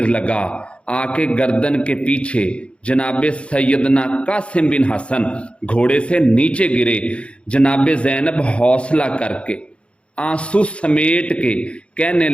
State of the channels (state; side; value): late; right; 0.059 ms